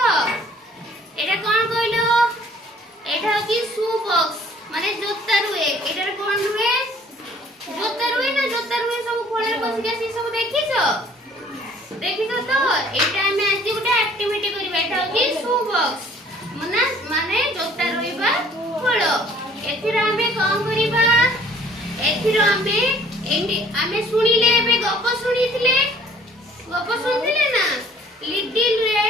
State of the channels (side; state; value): both; normal; correlation 0.56